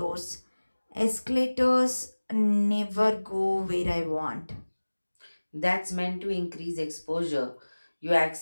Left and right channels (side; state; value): both; inverted; correlation -1.00